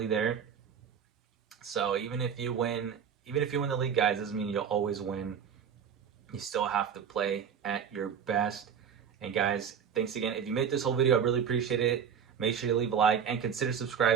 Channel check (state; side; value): quieter; left; 7.6 dB